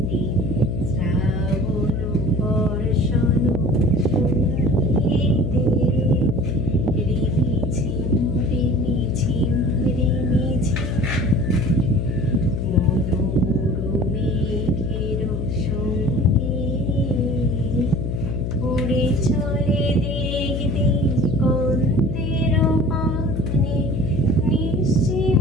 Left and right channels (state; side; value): noise; left; hum, 2 dB below the sound